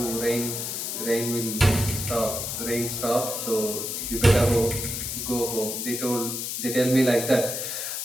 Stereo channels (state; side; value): noise; left; hiss, 4 dB below the sound